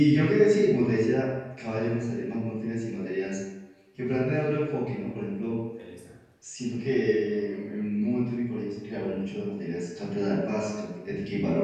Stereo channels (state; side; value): identical; both; correlation 1.00